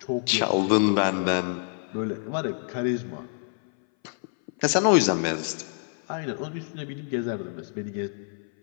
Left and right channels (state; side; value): silent; right; 58 dB below the other